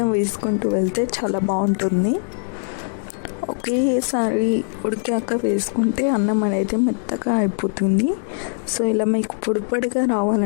వేసుకుంటూ వెళ్తే చాలా బాగుంటుంది. ఒకేసారి ఉడికాక వేసుకుంటే అన్నం అనేది మెత్తగా అయిపోతుంది. సో ఇలా మీకు పొడిగా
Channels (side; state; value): right; silent; digital silence